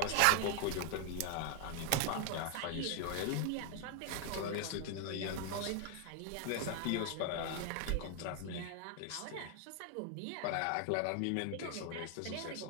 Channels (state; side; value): different; both; correlation 0.00